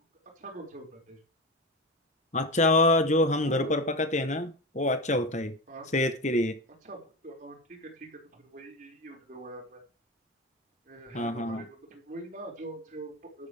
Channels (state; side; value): normal; both; correlation 0.22